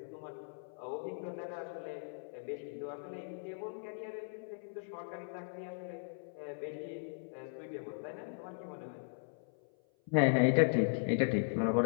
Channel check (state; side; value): silent; right; 53 dB below the other